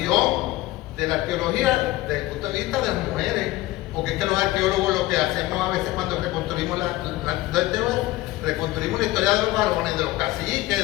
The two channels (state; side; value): quieter; right; 17.7 dB